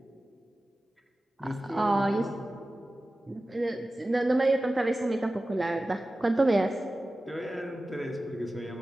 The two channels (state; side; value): normal; both; correlation 0.95